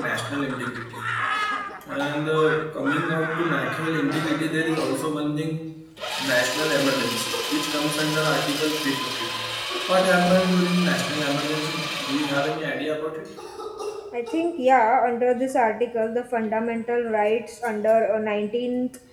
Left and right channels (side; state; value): both; identical; correlation 1.00